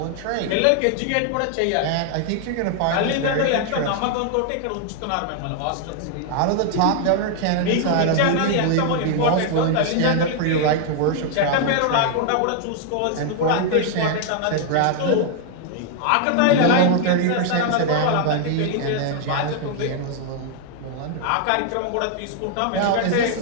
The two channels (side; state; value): both; different; correlation 0.00